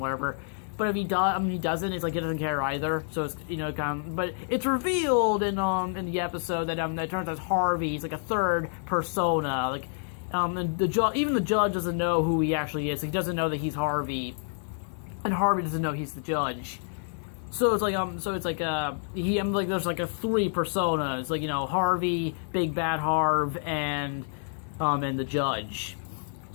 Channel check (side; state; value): right; silent; 56 dB below the other